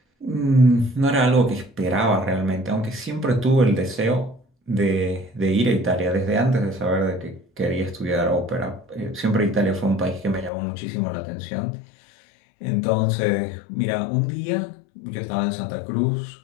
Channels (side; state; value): right; drops out; at 10.5 s